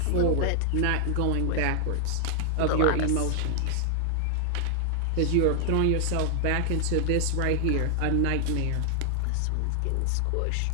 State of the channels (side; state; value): both; different; correlation 0.00